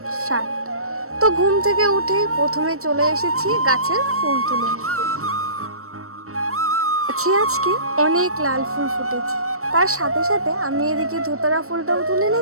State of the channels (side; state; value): left; late; 0.63 ms